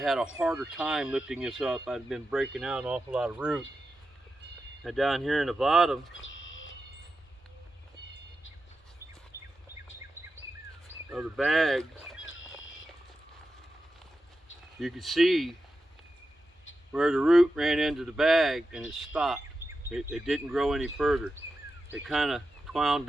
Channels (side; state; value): both; normal; correlation 0.90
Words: had a harder time lifting this up. I'd been breaking out an awful lot of root. And down here in the bottom, of the bag, you can see where the root ran into the bag and it stopped. It didn't grow any further. It kind of twound